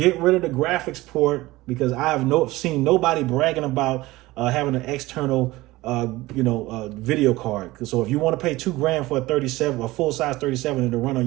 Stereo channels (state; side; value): quieter; left; 19.1 dB